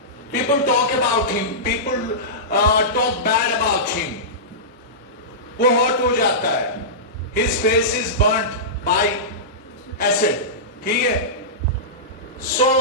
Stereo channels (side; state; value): both; normal; correlation -0.17